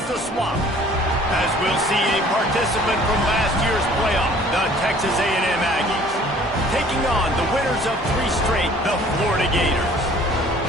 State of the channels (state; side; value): normal; both; correlation 0.53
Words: the Swamp. As we'll see a participant from last year's playoff, the Texas A&M Aggies, taking on the winners of 3 straight, the Florida Gators.